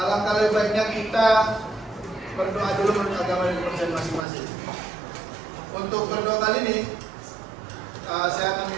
lebih baiknya kita berdoa dulu menurut agama dan kepercayaan masing-masing. Untuk berdoa kali ini, saya akan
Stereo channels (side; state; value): left; drops out; at 4.2 s